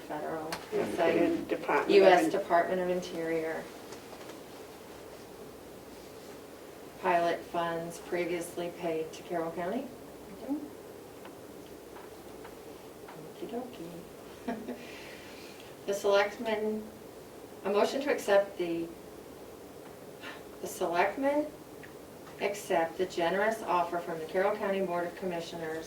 Yeah, and put say in Department of U.S. In- Department of Interior. Pilot funds previously paid to Carroll County. Okey-dokey. The selectmen, a motion to accept the selectmen accept the generous offer from the Carroll County Board of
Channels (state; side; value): identical; both; correlation 1.00